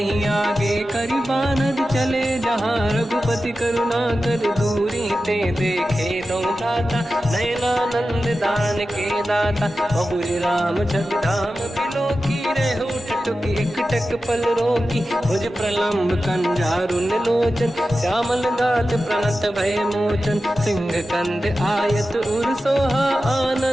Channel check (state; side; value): normal; both; correlation 0.93